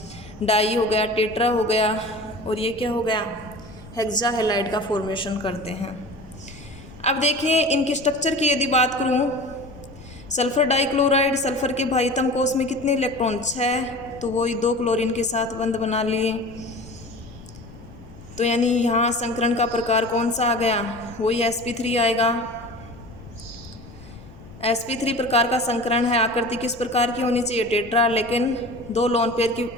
डाई हो गया, टेट्रा हो गया, और ये क्या हो गया, हेक्सा हेलाइड का फॉर्मेशन करते हैं। अब देखिए इनकी स्ट्रक्चर की यदि बात करूँ, सल्फर डाइक्लोराइड, सल्फर के भाइतम कोष में कितने इलेक्ट्रॉन, 6, तो वो 2 क्लोरीन के साथ बंध बना लिए। तो यानी यहाँ संकरण का प्रकार कौन सा आ गया, वही sp3 आएगा। sp3 प्रकार का संकरण है। आकृति किस प्रकार की होनी चाहिए, टेट्रा, लेकिन 2 लोन पेयर की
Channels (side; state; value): left; noise; rumble, 19 dB below the sound